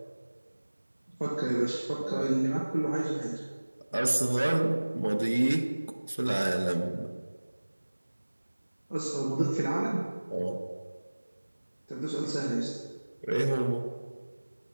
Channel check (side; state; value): both; inverted; correlation -1.00